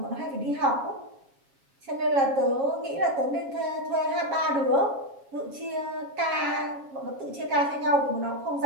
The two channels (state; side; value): late; left; 7.3 ms